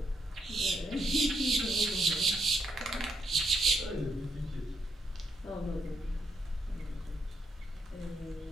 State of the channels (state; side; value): normal; both; correlation 0.77